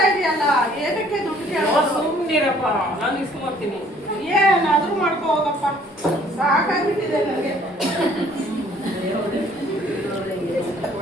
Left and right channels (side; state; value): both; normal; correlation 0.58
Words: ಇದೆಯಲ್ಲ, ಏನಕ್ಕೆ ದುಡ್ಡು ಕೇಳೋದು? ಸುಮ್ನಿರಪ್ಪ, ನಾನು ಇಸ್ಕೊಂಬರ್ತೀನಿ. ಏನಾದ್ರೂ ಮಾಡ್ಕೋ ಹೋಗಪ್ಪ, ಸಾಕಾಗ್ಬಿಟ್ಟಿದೆ ನನಗೆ.